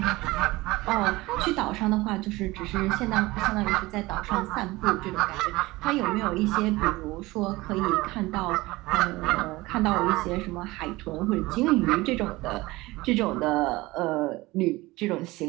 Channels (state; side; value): quieter; left; 20.4 dB